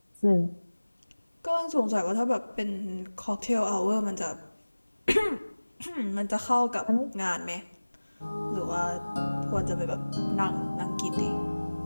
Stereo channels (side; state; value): both; inverted; correlation -1.00